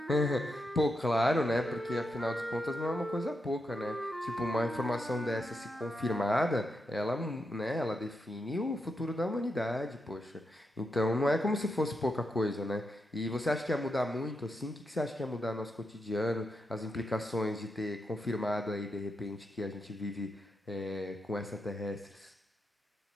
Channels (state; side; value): normal; both; correlation 0.84